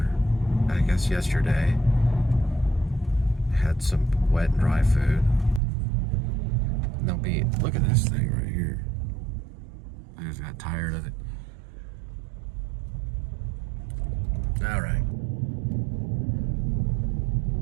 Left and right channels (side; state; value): left; drops out; at 5.6 s